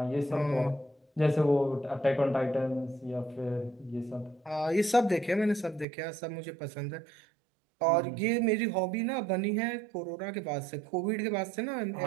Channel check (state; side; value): drops out; left; at 5.9 s